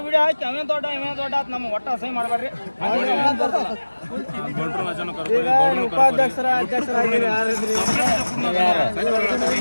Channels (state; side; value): inverted; both; correlation -1.00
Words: ವಿಡಿಯೋ ಹಾಕಿ ಅವೇನ್ ದೊಡ್ಡ ಆತ್ ನಮ್ಮ ಒಟ್ಟ ಅಸಹ್ಯ ಮಾಡಬೇಡ್ರಿ ಉಪಾಧ್ಯಕ್ಷರ ಅಧ್ಯಕ್ಷರಾಗಿ